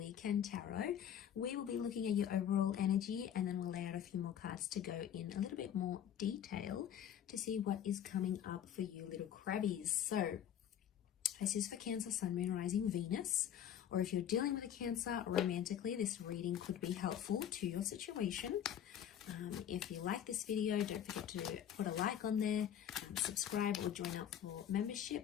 tarot. We will be looking at your overall energy and then we'll lay out a few more cards to go in a little bit more detail to see what is coming up for you little crabbies. So this is for Cancer, Sun, Moon, Rising, Venus, or if you're dealing with a Cancer romantically, this reading could be helpful to your situation. If you like this video, don't forget to put a like on there, subscribe or join up for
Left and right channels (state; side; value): quieter; right; 9.7 dB